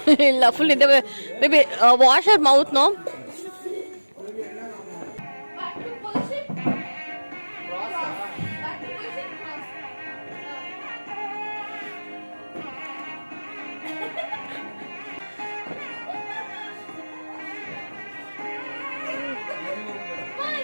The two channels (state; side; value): inverted; both; correlation -1.00